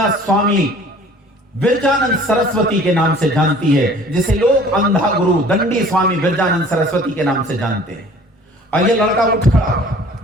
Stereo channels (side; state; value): both; normal; correlation 0.50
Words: स्वामी विरजानंद सरस्वती के नाम से जानती है, जिसे लोग अंधा गुरु दंडी स्वामी विरजानंद सरस्वती के नाम से जानते हैं। और ये लड़का उठ खड़ा,